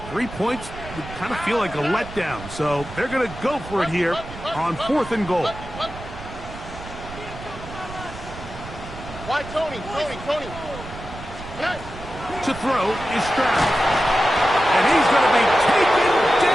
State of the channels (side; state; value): right; noise; rumble, 13 dB below the sound